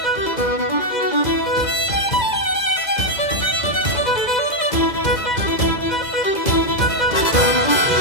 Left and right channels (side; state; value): right; late; 2.0 ms